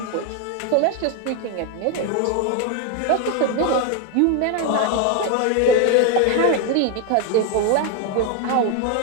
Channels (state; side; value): different; both; correlation 0.01